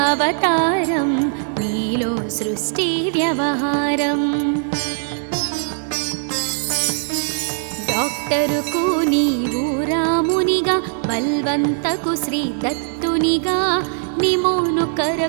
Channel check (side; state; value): left; silent; digital silence